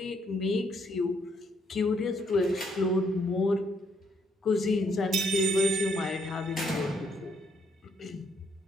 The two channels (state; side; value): normal; both; correlation 0.72